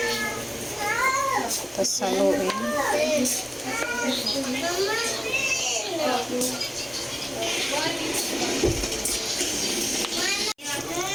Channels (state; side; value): identical; both; correlation 1.00